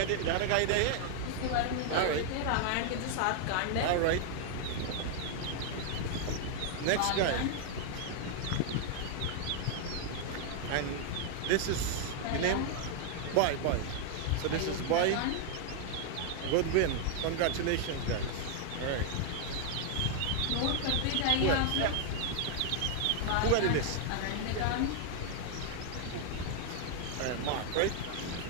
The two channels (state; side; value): different; both; correlation 0.00